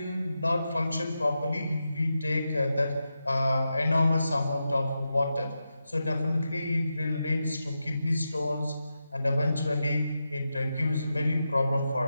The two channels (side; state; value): both; inverted; correlation -0.89